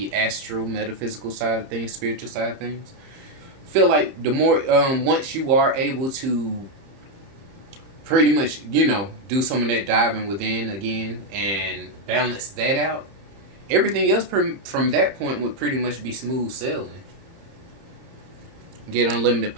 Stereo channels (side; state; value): left; late; 30 ms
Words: astral metaphysical side of things, spiritual side of things. Feel like the more once you are able to pretty much, do some of that diving within again and balance that out, everything else from that point would pretty much be smooth sailing. Get unlimited